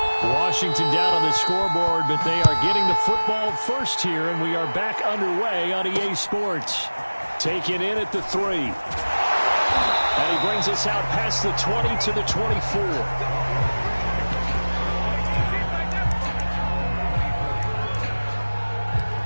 Washington down on the scoreboard, but they are getting the football first here, and we are back underway on EA Sports. Taken in at the 3. And he brings us out past the 20 to the 24.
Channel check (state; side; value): inverted; both; correlation -1.00